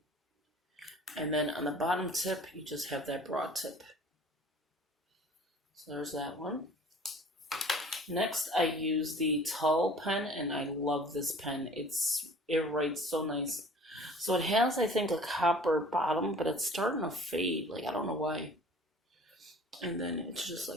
and then on the bottom tip you just have that broad tip. So there's that one. Next, I use the Tull pen, and I love this pen. It writes so nice. So it has, I think, a copper bottom, but it's starting to fade. Like, I don't know why. And then it's just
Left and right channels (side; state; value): both; normal; correlation 0.48